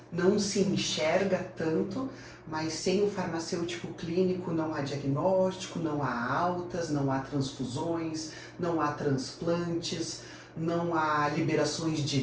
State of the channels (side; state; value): both; identical; correlation 1.00